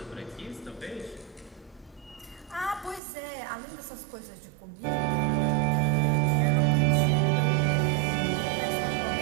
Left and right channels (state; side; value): drops out; left; at 3.0 s